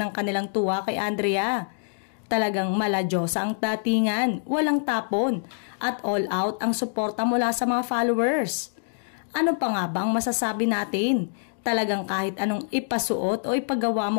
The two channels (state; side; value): silent; right; digital silence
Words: kanilang tuwa kay Andrea. Talagang maladyosa ang datingan, walang tapon at all out ang suporta mula sa mga followers. Ano pa nga bang masasabi natin? Talagang kahit anong ipasuot o ipagawa